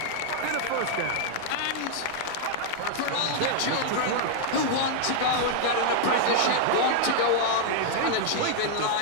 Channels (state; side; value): different; both; correlation -0.01